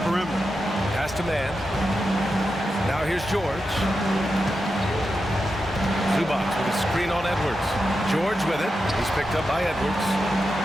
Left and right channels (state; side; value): normal; both; correlation 0.89